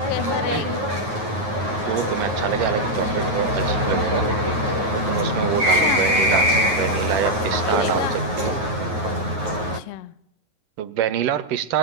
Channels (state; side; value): late; left; 9.4 ms